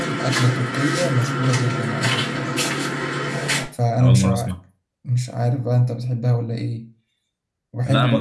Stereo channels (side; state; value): both; identical; correlation 1.00